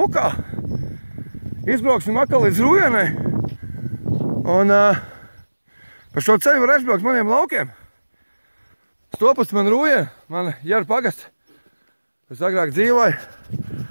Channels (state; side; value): inverted; both; correlation -1.00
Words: Izbrauksim atkal līdz Rujenai. Un pa šo ceļu var aizbraukt maniem laukiem. Stopus man Rujena, man Jara pagasts. Es agrāk dzīvoju.